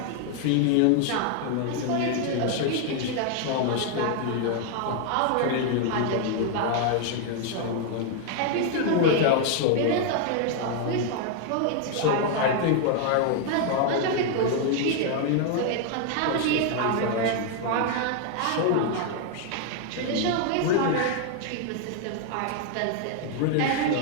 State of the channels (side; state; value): both; different; correlation 0.00